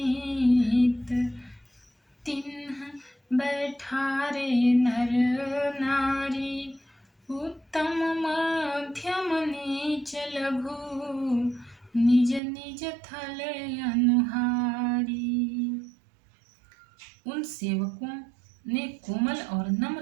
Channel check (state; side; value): drops out; left; at 12.4 s